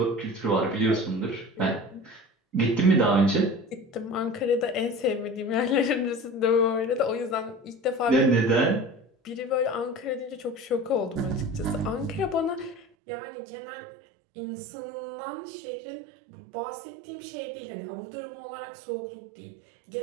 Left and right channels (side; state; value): left; drops out; at 12.9 s